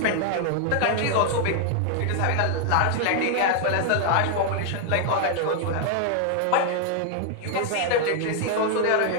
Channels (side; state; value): both; different; correlation 0.00